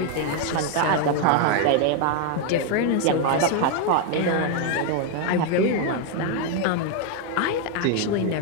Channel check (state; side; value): different; both; correlation 0.00